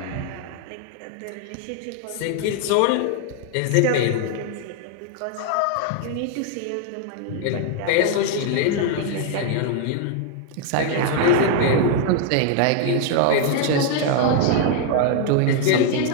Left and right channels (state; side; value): different; both; correlation 0.00